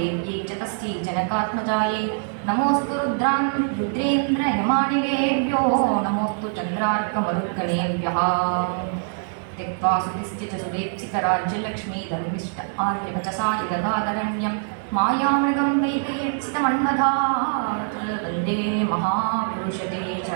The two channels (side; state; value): left; silent; digital silence